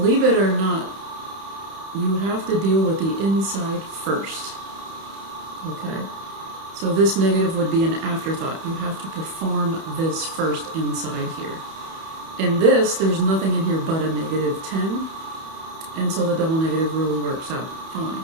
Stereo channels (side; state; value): left; late; 31 ms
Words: it or not, you have to deal with the inside first. Okay? So this negative would be an afterthought. You have to perform this first inside here. In this, there's nothing in here but a negative 10, and so the double negative rule works out fine.